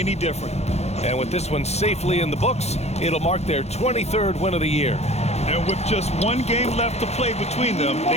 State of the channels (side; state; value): right; late; 0.31 ms